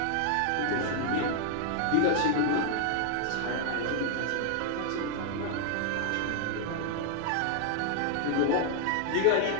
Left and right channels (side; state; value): both; different; correlation 0.00